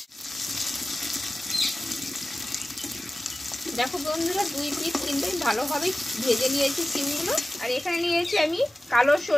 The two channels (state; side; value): normal; both; correlation 0.96